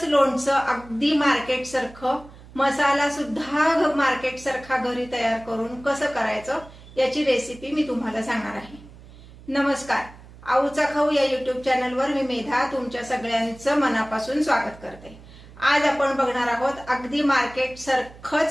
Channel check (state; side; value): noise; right; hum, 20 dB below the sound